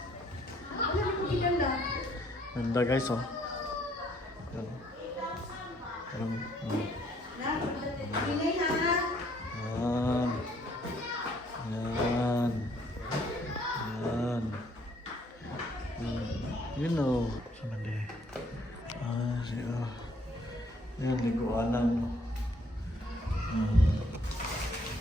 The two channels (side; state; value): both; normal; correlation 0.64